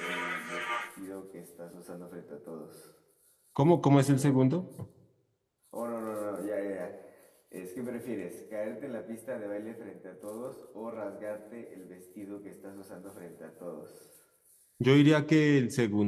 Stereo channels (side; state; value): both; identical; correlation 1.00